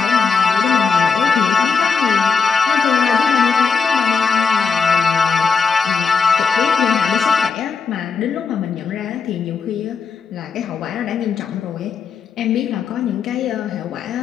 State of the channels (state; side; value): quieter; right; 5.4 dB